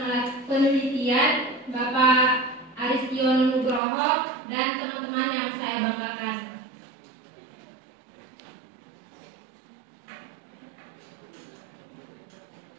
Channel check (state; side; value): drops out; left; at 3.8 s